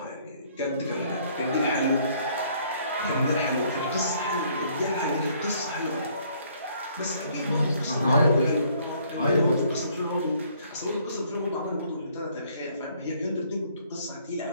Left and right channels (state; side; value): inverted; both; correlation -0.63